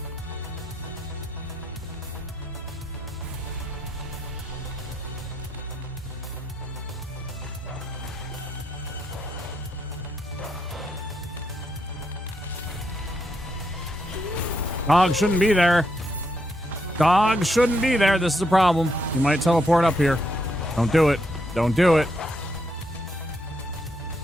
Dog shouldn't be there. Dog shouldn't be there. This is a problem. You might teleport up here. Don't do it. Don't do it.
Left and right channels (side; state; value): both; normal; correlation 0.78